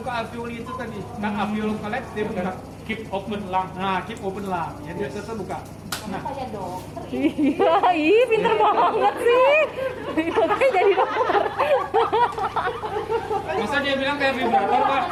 alveoli itu tadi. Kan alveoli collapse, dia buka keep open lung. Nah, keep open lung. Jadi dia tetap buka. Nah, Iya, pinter banget sih. Makanya jadi dokter. masa dia bilang kayak vibrator, Pak?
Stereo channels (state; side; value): identical; both; correlation 1.00